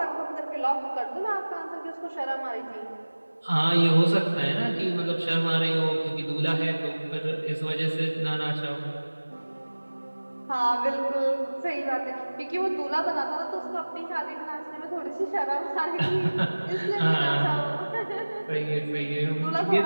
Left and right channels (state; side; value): inverted; both; correlation -1.00